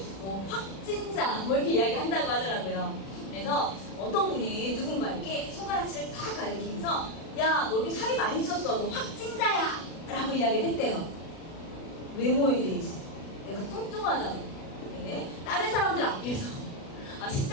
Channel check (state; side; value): late; right; 36 ms